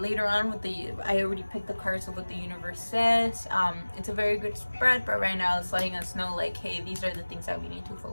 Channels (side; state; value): both; inverted; correlation -1.00